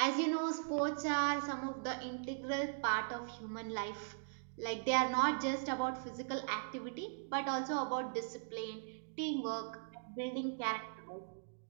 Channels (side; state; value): left; silent; digital silence